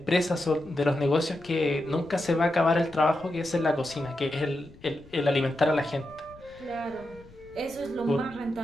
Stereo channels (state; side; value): noise; left; rumble, 23 dB below the sound